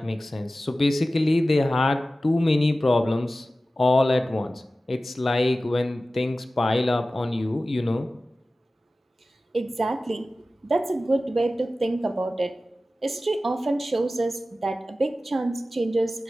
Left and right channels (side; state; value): both; normal; correlation 0.95